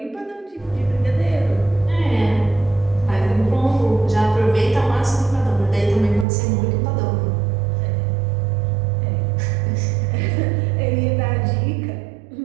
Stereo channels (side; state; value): left; drops out; at 6.2 s